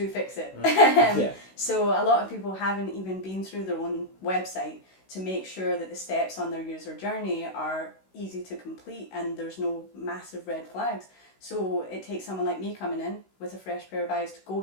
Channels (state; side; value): late; right; 16 ms